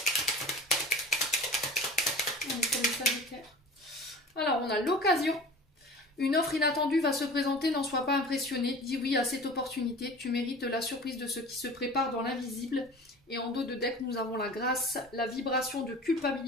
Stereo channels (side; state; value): both; normal; correlation 0.40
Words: Alors, on a l'occasion. Une offre inattendue va se présenter, n'en sois pas impressionné. Dis oui à cette opportunité. Tu mérites la surprise de ce qui se prépare dans l'invisible. Et en dos de deck, nous avons la grâce, la vibration de